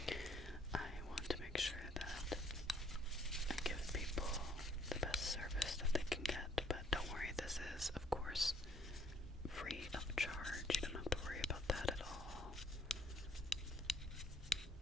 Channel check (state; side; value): normal; both; correlation 0.63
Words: I want to make sure that I give people the best service that they can get. But don't worry, this is, of course, free of charge. You don't have to worry about that at all.